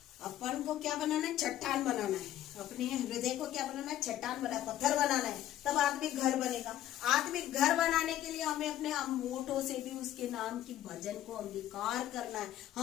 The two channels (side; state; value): right; quieter; 12.8 dB